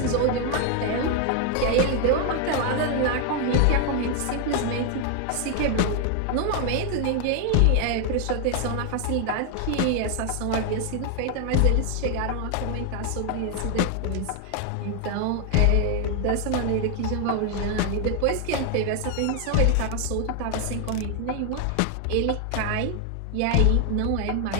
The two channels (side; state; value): both; different; correlation 0.00